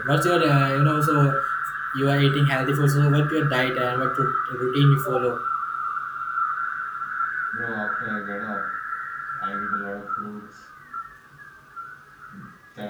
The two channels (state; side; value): identical; both; correlation 1.00